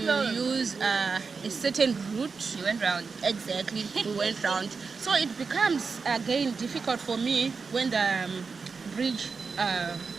use a certain route. You went round. Exactly, we went round. So it becomes again difficult for me when the bridge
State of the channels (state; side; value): quieter; left; 4.9 dB